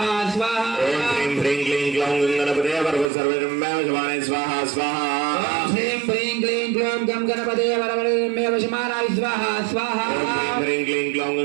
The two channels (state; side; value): drops out; left; at 3.1 s